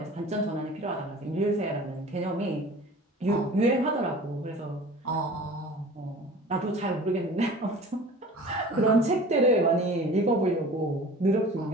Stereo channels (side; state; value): both; normal; correlation 0.42